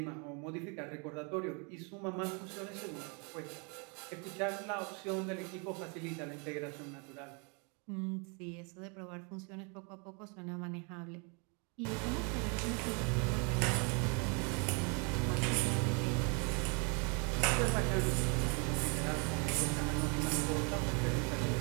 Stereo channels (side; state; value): left; quieter; 34.3 dB